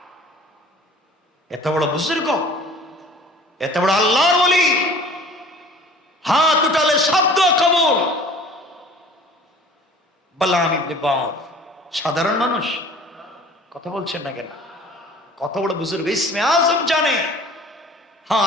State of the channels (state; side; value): normal; both; correlation 0.47